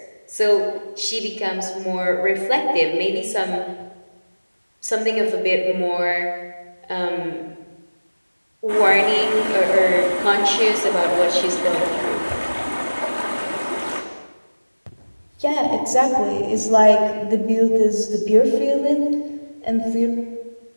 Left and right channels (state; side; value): inverted; both; correlation -1.00